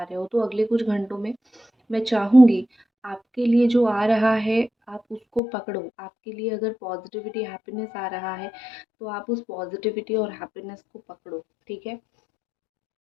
रहे हो। तो अगले कुछ घंटों में मैं चाहूँगी आपके लिए जो आ रहा है, आप उसको पकड़ो। आपके लिए अगर पॉज़िटिविटी, हैप्पीनेस आ रहा है, तो आप उस पॉज़िटिविटी और हैप्पीनेस को पकड़ो, ठीक है?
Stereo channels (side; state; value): right; drops out; at 5.4 s